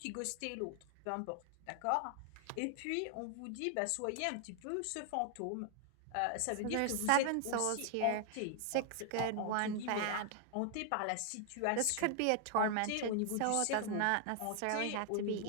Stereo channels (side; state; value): both; different; correlation 0.00